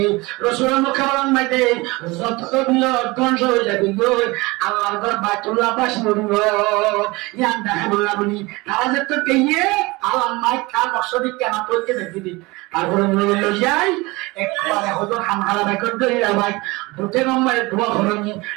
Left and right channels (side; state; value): left; quieter; 23.2 dB